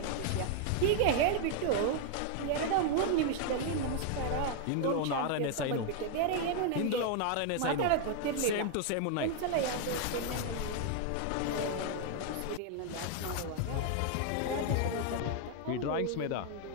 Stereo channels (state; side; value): different; both; correlation 0.00